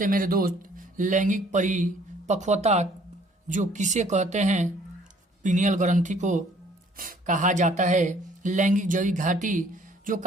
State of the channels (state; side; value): normal; both; correlation 0.59